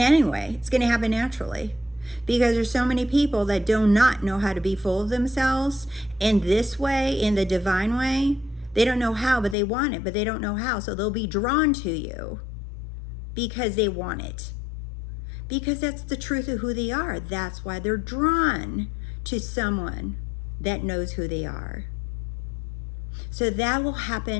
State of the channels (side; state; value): right; drops out; at 9.6 s